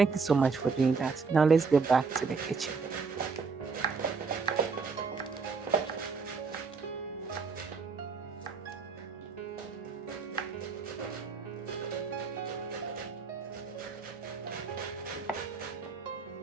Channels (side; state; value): left; quieter; 4.9 dB